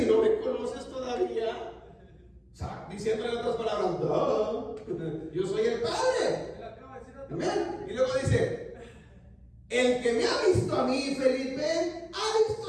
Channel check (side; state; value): both; identical; correlation 1.00